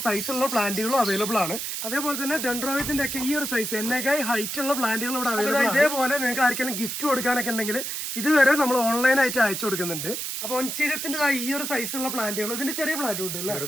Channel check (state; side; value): noise; right; hiss, 4 dB below the sound